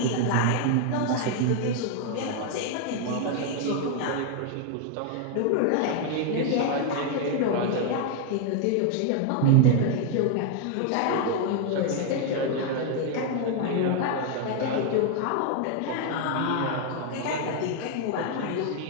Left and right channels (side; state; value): both; different; correlation 0.01